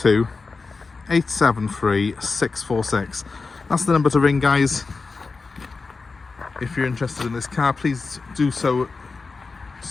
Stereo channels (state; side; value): quieter; right; 4.2 dB